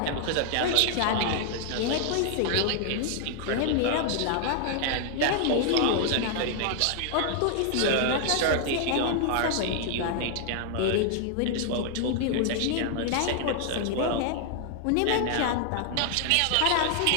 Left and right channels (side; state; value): both; different; correlation 0.00